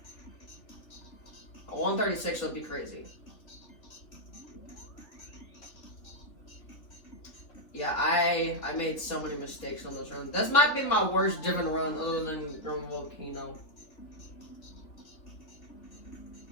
A 136 would be crazy. Yeah, I made so many mistakes on this run. This might be my worst driven run other than Grim Volcano.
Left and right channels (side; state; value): right; late; 3.5 ms